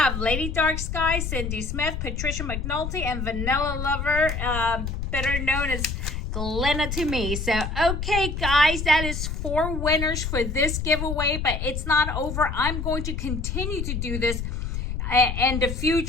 Lady Dark Sky, Cindy Smith, Patricia McNulty, and Vanilla Lover, better known as Glenna to me. So, okay, guys, that is 4 winners for this giveaway, but it's not over. I'm going to continue to do this in the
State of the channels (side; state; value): left; noise; rumble, 4 dB below the sound